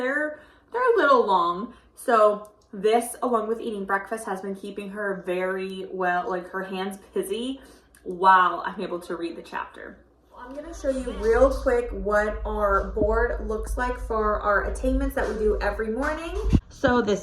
a little long. So this, along with eating breakfast, has been keeping her very well, like her hands busy while I'm able to read the chapter. I'm gonna show you real quick what our board looks like for our attainments that we do every morning. So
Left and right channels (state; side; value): identical; both; correlation 1.00